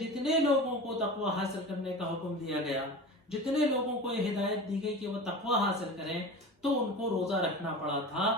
لوگوں کو تقوی حاصل کرنے کا حکم دیا گیا، جتنے لوگوں کو یہ ہدایت دی گئی کہ وہ تقوی حاصل کریں، تو ان کو روزہ رکھنا پڑا تھا،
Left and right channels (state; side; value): normal; both; correlation 0.32